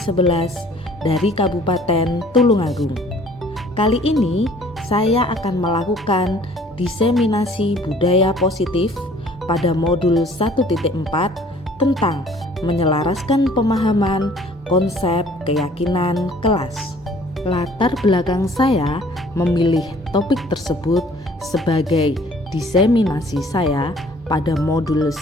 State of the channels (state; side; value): normal; both; correlation 0.55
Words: dari Kabupaten Tulungagung. Kali ini saya akan melakukan diseminasi budaya positif pada modul 1.4 tentang menyelaraskan pemahaman konsep keyakinan kelas. Latar belakang saya memilih topik tersebut sebagai diseminasi saya pada modul